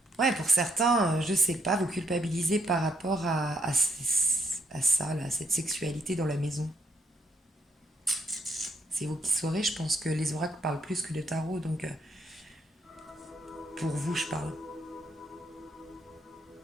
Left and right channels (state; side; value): normal; both; correlation 0.73